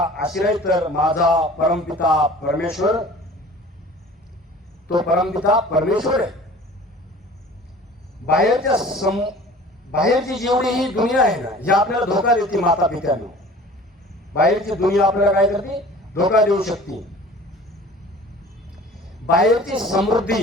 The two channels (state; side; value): normal; both; correlation 0.45